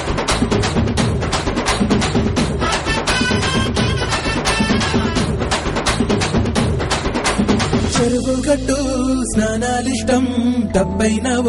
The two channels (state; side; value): identical; both; correlation 1.00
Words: చెరువు గట్టు స్నానాలిష్టం డబ్బైనా